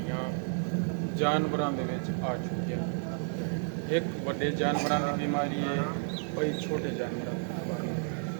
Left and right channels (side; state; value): left; silent; 57 dB below the other